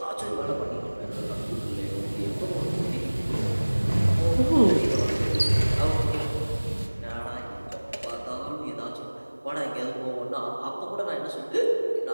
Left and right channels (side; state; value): both; inverted; correlation -1.00